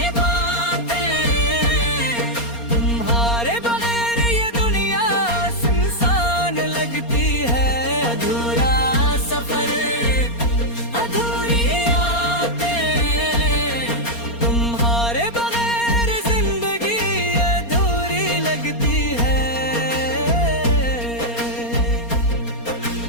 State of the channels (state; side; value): late; right; 4.3 ms